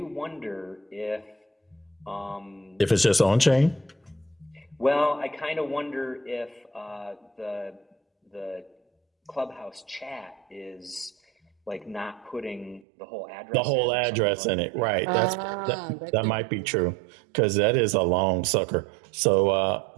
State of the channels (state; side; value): drops out; left; at 12.9 s